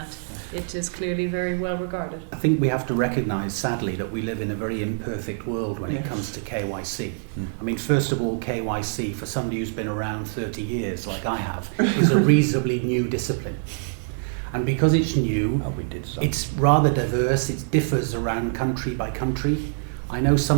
it is clearly very well regarded. I think we have to recognise, sadly, that we live in a very imperfect world when it comes to KYC. I mean, first of all, KYC, for somebody who's been around 30 years, like I have, is a reasonably new discipline. And because it's new, it's rather diverse, it differs around country by country. I know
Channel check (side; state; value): left; silent; digital silence